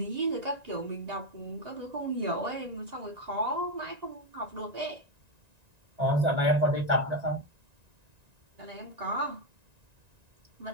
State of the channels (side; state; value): left; late; 1.9 ms